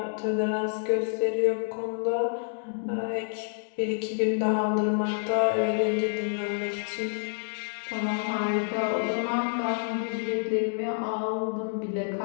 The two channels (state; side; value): silent; right; digital silence